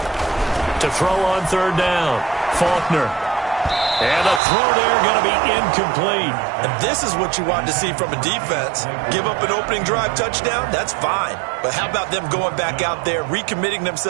To throw on third down, Faulkner. And the throw there going to be incomplete. And this is what you want to see from a defense. Give up an opening drive touchdown, that's fine. But how about them going back out there, recommitting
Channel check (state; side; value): drops out; left; at 4.4 s